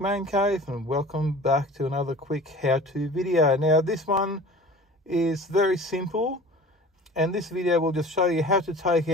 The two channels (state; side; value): normal; both; correlation 0.42